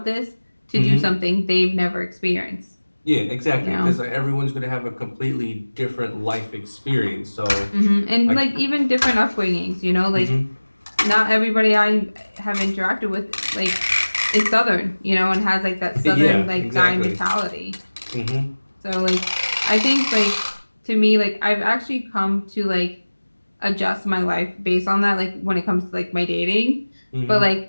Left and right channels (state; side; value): inverted; both; correlation -1.00